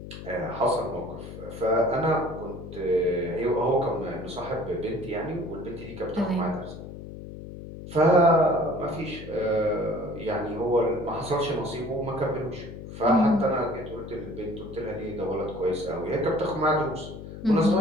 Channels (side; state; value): left; noise; hum, 11 dB below the sound